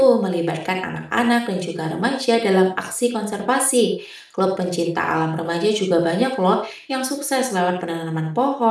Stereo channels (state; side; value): identical; both; correlation 1.00